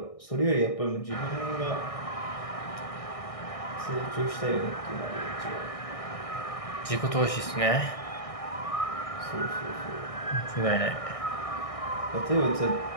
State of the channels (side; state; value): right; late; 1.6 ms